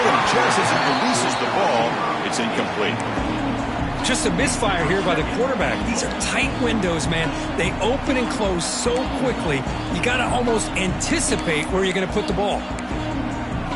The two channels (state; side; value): identical; both; correlation 1.00